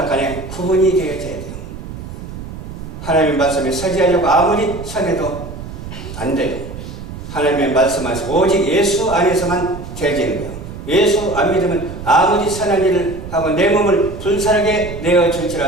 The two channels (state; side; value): noise; right; rumble, 11 dB below the sound